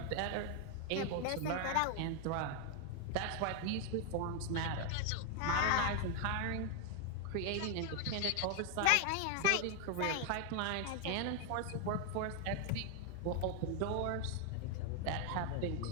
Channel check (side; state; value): both; different; correlation 0.00